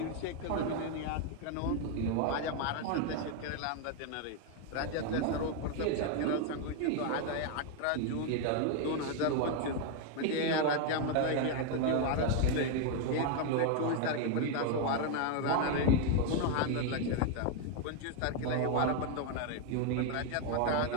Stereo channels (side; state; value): both; different; correlation 0.01